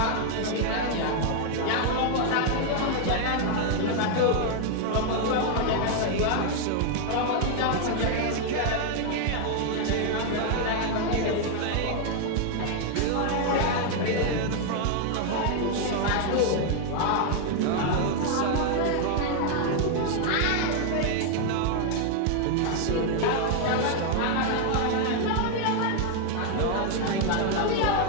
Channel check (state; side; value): different; both; correlation 0.00